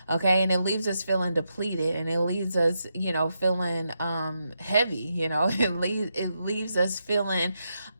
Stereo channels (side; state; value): both; inverted; correlation -0.84